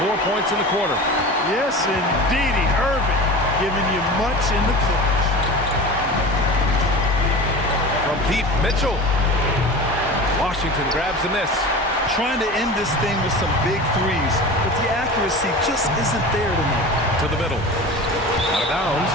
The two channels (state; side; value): normal; both; correlation 0.33